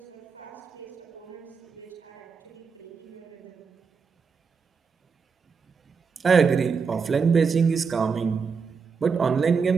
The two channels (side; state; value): left; quieter; 5.5 dB